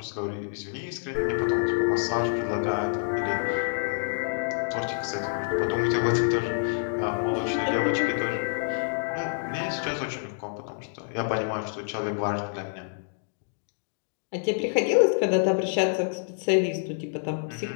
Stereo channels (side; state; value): right; silent; digital silence